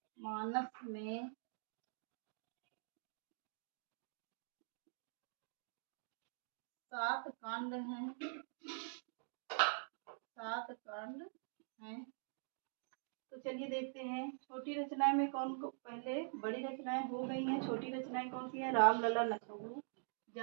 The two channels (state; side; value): silent; left; digital silence